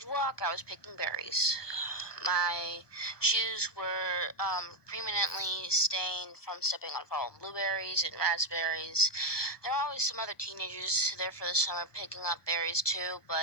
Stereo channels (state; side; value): late; right; 1.2 ms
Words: walk, I was picking berries. My shoes were permanently stained from stepping on fallen blueberries and raspberries. There were always some other teenagers there for the summer picking up berries too,